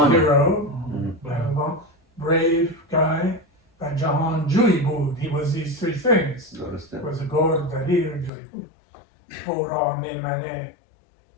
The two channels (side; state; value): right; drops out; at 8.3 s